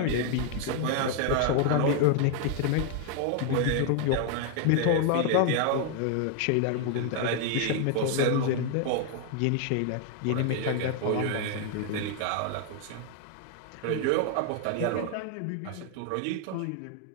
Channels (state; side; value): different; both; correlation 0.00